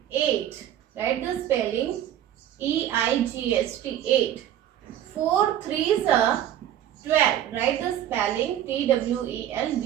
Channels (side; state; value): left; quieter; 11.2 dB